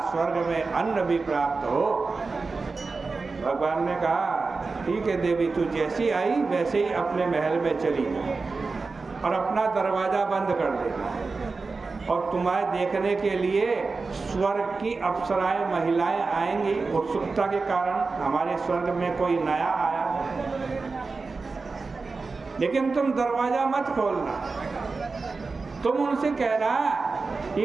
स्वर्ग में अन्न भी प्राप्त हो। भगवान ने कहा, ठीक है देवी, तू जैसी आई वैसे ही अपने महल में चली जा और अपना दरवाजा बंद कर देना, और तुम्हारे देखने के लिए स्वर्ग की अप्सराएं महिलाएं आएंगी। उत्सुकता के कारण हमारे स्वर्ग में कोई नया आया है, लेकिन तुम दरवाजा मत खोलना। तुम उनसे कहना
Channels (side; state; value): left; quieter; 4.1 dB